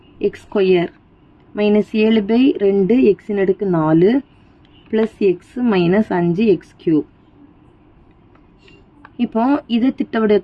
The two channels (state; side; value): identical; both; correlation 1.00